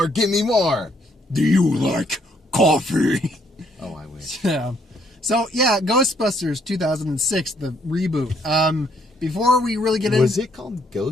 give me more. Do you like coffee? Oh, I wish. Yeah. So, yeah, Ghostbusters 2006, the reboot. Before we really get into... Was it called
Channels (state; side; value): normal; both; correlation 0.68